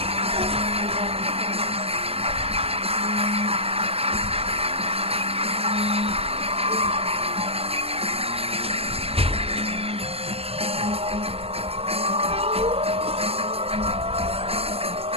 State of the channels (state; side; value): late; left; 0.29 ms